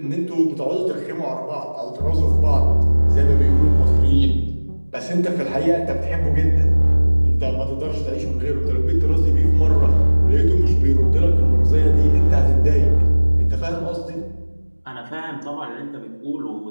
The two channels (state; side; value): inverted; both; correlation -1.00